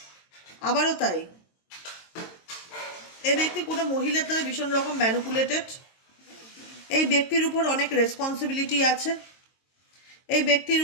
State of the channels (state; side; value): late; right; 22 ms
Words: তাই এই ব্যক্তি কোনো মহিলার দ্বারা ভীষণ রকম ম্যানিপুলেটেড, এই ব্যক্তির উপর অনেক রেসপন্সিবিলিটি আছে, এই ব্যক্তির